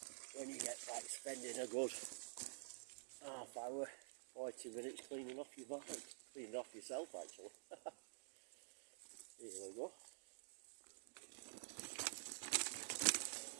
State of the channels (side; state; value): left; silent; digital silence